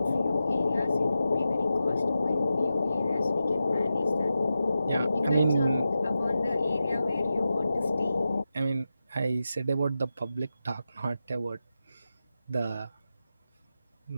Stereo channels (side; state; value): both; inverted; correlation -0.91